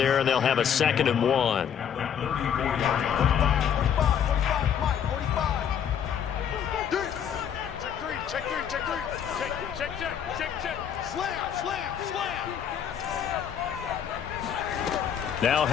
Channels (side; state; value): right; quieter; 8.5 dB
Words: and they'll have a 2nd and 1. Now